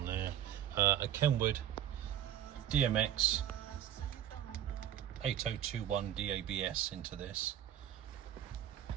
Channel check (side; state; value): left; quieter; 10.9 dB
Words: there, a KENWOOD DMX8021DABS into this.